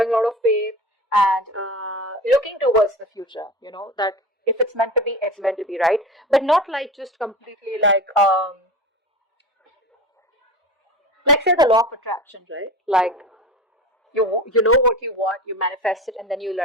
a lot of faith, and looking towards the future, that if it's meant to be, it's meant to be, right? But not like just completely like say the law of attraction, right? Like you know what you want, you manifest it, and then you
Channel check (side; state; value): both; normal; correlation 0.32